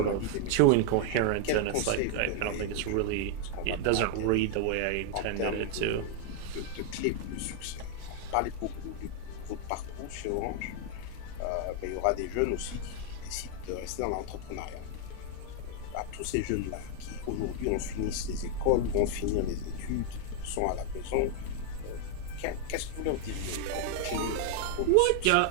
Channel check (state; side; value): different; both; correlation 0.00